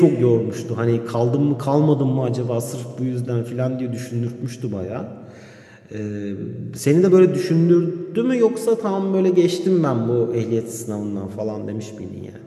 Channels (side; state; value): both; identical; correlation 1.00